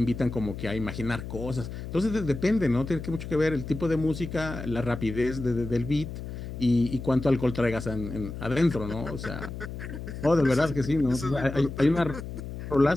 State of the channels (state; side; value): noise; left; hum, 8 dB below the sound